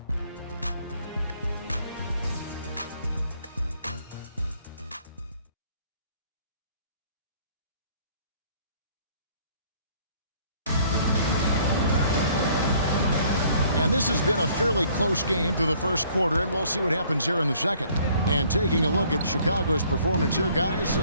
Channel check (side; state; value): both; inverted; correlation -0.60